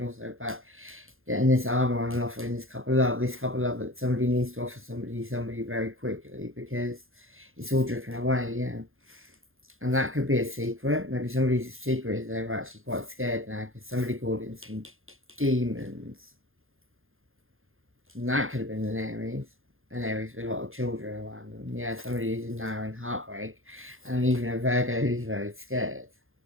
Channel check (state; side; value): late; left; 0.60 ms